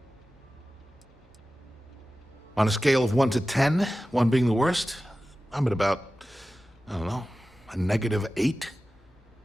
On a scale of 1 to 10, 1 being the worst, I'm at about, I don't know, a -8.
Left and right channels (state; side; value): normal; both; correlation 0.95